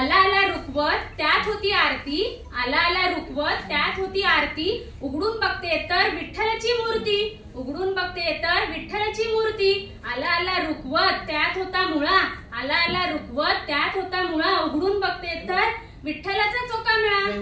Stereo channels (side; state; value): both; identical; correlation 1.00